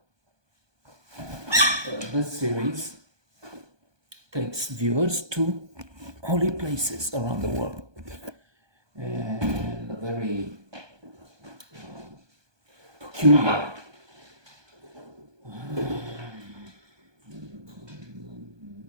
This series takes viewers to holy places around the world, and a very peculiar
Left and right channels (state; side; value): late; left; 1.2 ms